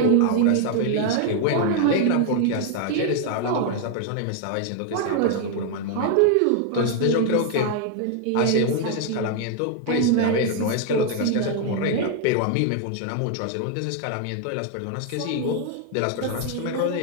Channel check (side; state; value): both; different; correlation 0.00